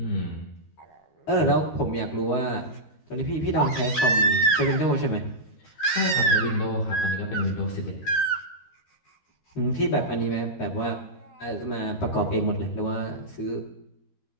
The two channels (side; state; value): right; late; 13 ms